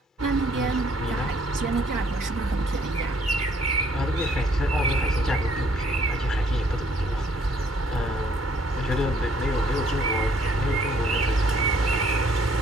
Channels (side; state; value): both; normal; correlation 0.64